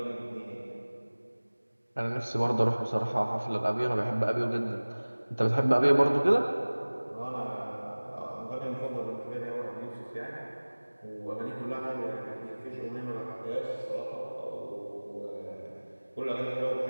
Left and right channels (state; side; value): inverted; both; correlation -1.00